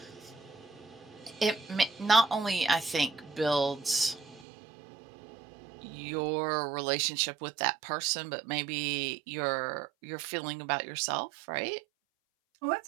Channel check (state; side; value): drops out; left; at 4.5 s